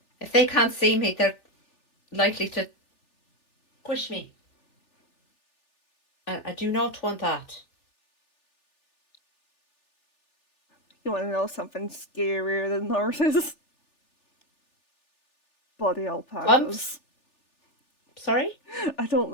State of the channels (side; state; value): right; late; 3.4 ms